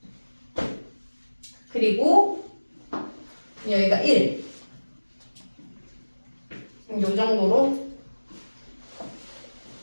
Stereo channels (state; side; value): inverted; both; correlation -1.00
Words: 그리고 여기가 1. 요 정도로